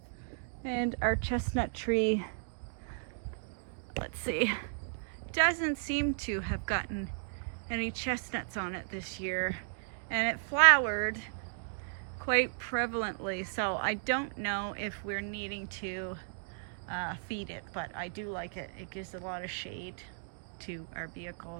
And our chestnut tree, let's see, doesn't seem to have gotten any chestnuts on it this year, and it flowered quite prevalently, so I don't know if we're needing to feed it, but I do like it. It gives a lot of shade to our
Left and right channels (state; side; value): silent; left; digital silence